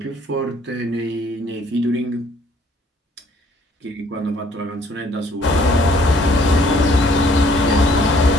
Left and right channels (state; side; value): normal; both; correlation 0.61